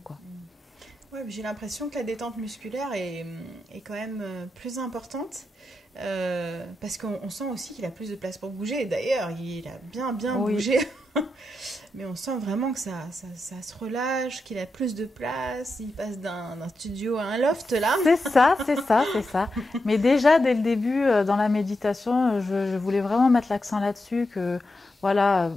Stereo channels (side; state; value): both; normal; correlation 0.87